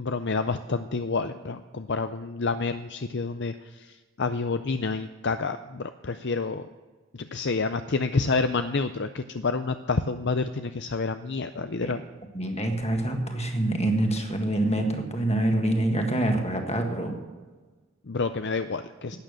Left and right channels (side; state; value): both; normal; correlation 0.40